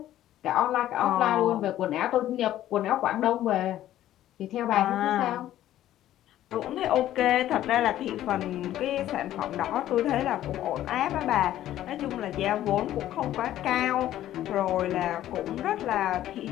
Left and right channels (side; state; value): right; quieter; 13.0 dB